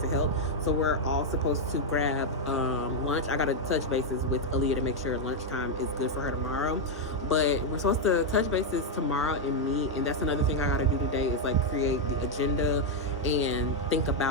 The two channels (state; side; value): normal; both; correlation -0.01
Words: to help. So we're all supposed to grab lunch. I gotta touch bases with Aaliyah to make sure lunchtime is good for her tomorrow, but we're supposed to touch bases tomorrow and meet. And that's another thing I gotta do today, is like create the agenda and think